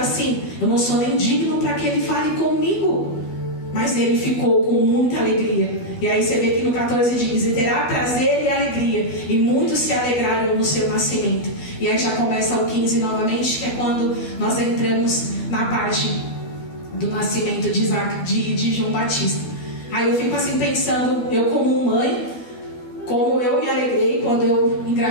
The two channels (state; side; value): late; right; 12 ms